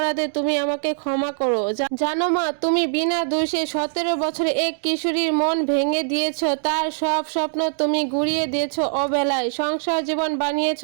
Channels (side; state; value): left; silent; digital silence